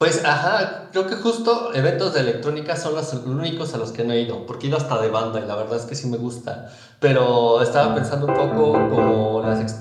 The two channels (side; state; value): both; identical; correlation 1.00